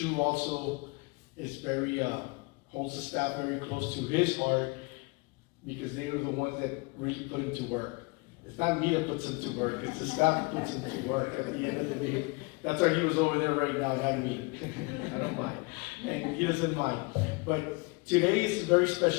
also is very, holds the staff very close to his heart because they were the ones that really put him to work. It's not me that puts him to work, it's the staff that puts him to work at the end of the day. That's why he was over there right now, not me. I don't mind. And he doesn't mind. But today is a very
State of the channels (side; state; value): right; quieter; 28.2 dB